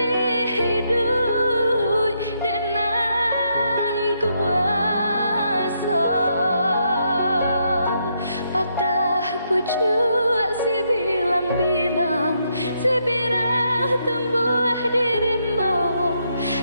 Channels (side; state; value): both; inverted; correlation -0.77